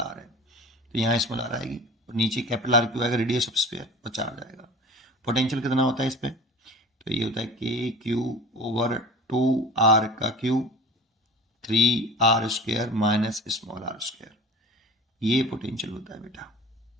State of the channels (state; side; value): normal; both; correlation 0.38